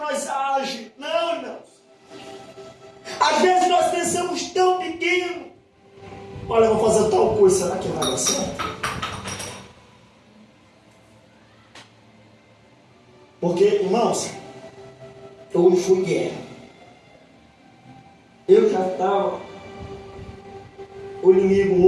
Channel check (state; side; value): identical; both; correlation 1.00